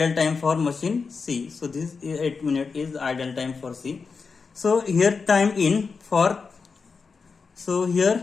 time for machine C. So this 8 minute is the idle time for C. So here time in for, so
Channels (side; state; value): right; quieter; 5.0 dB